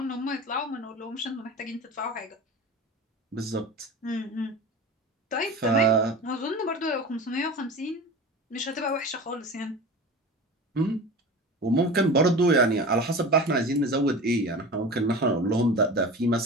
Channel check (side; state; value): both; normal; correlation 0.33